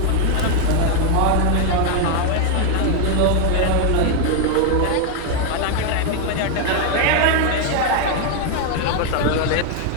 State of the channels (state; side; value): different; both; correlation 0.01